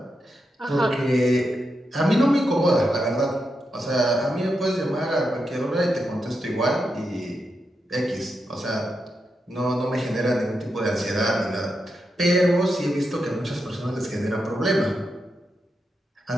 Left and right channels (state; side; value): normal; both; correlation 0.86